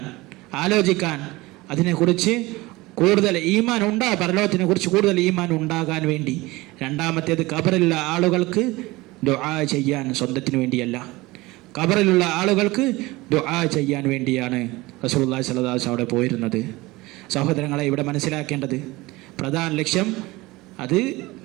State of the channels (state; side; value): quieter; left; 21.0 dB